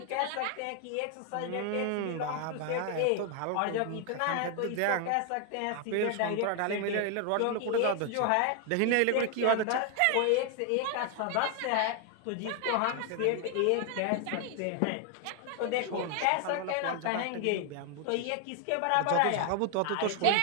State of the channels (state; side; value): different; both; correlation 0.00